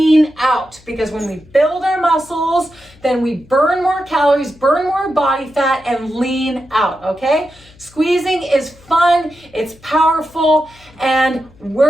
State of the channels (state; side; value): noise; left; hum, 26 dB below the sound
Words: out. Because when we build our muscles, then we burn more calories, burn more body fat, and lean out, okay? Squeezing is fun, it's powerful, and